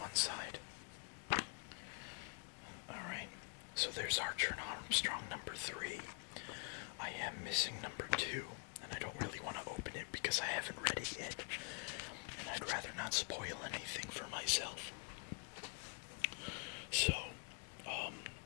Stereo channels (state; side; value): quieter; right; 35.4 dB